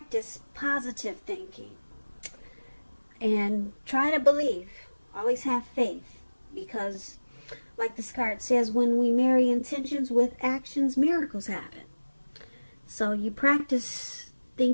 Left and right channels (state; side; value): inverted; both; correlation -1.00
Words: positive thinking and try to believe. Always have faith, because like this card says, when we marry intentions with actions, miracles happen. So you practice